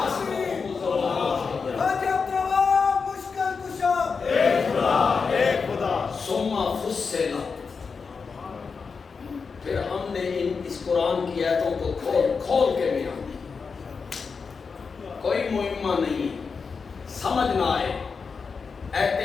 سوما فصلا. پھر ہم نے اس قرآن کی آیتوں کو کھول کھول کے بیان کیا. کوئی مہمہ نہیں ہے، سمجھ نہ آئے.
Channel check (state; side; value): quieter; right; 5.2 dB